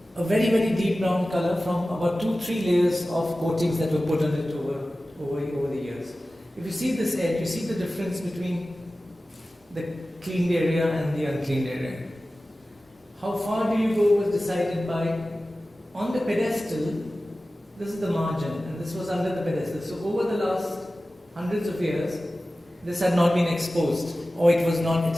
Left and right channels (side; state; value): both; normal; correlation 0.96